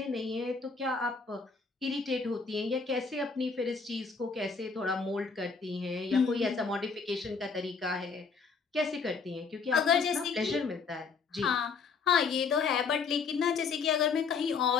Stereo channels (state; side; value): quieter; right; 5.1 dB